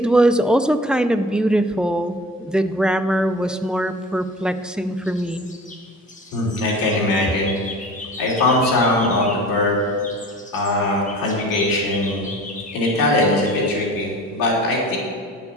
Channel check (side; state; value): both; normal; correlation 0.41